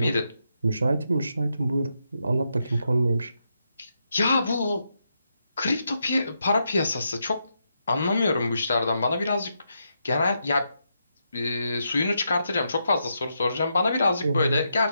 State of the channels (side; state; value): both; inverted; correlation -0.82